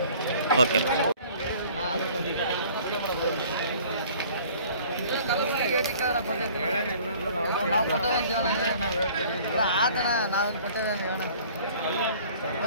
ಓಕೆ. ನಾವು ಕೊಟ್ಟೇವೆ ಆತಣ. ನಾವೇನು ಕೊಟ್ಟೇವೆ ಹೇಳೋಣ.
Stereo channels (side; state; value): both; inverted; correlation -0.51